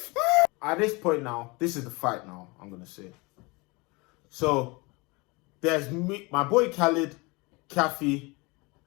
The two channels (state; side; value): quieter; right; 26.1 dB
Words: at this point now, this is the fight now, I'm going to say. So, there's me, my boy Khalid, Kathy,